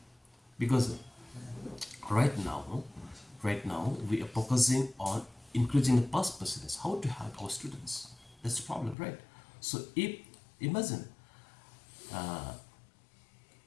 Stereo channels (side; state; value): right; drops out; at 9.0 s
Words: because right now we are focusing on increasing the pass percentage, how to help our students. That's the problem, right? So if imagine